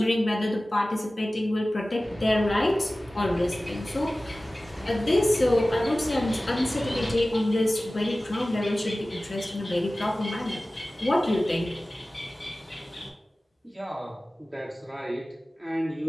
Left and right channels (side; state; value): both; normal; correlation 0.97